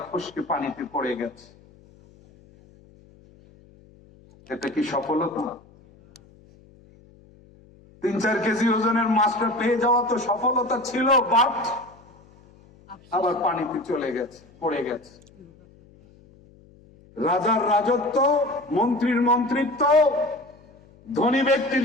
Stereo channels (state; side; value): noise; left; hum, 27 dB below the sound